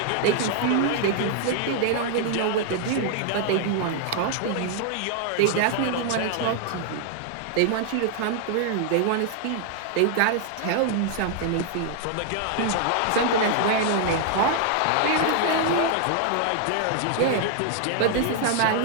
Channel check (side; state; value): both; different; correlation 0.00